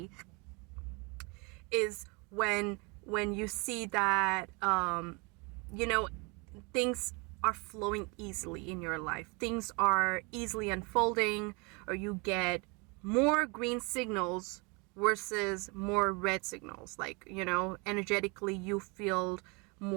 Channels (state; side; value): quieter; left; 29.9 dB